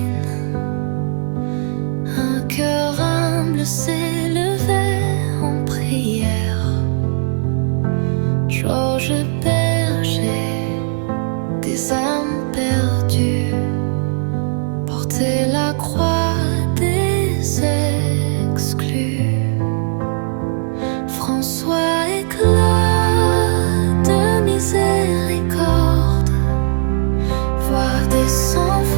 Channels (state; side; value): silent; left; 65 dB below the other